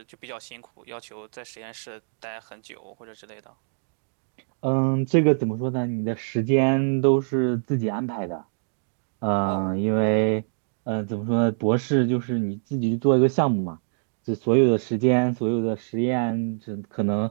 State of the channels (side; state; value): left; silent; digital silence